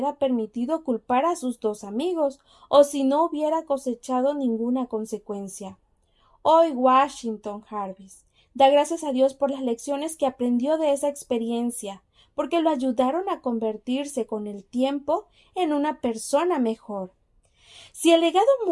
permitido culpar a sus dos amigos o si no hubiera cosechado ninguna consecuencia. Hoy Washington Jarvis da gracias a Dios por las lecciones que aprendió de esa experiencia, porque lo ayudaron a convertirse con el tiempo en una persona mejor. Si el legado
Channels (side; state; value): both; identical; correlation 1.00